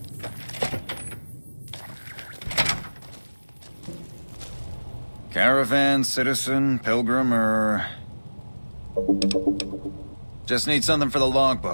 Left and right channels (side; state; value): both; inverted; correlation -1.00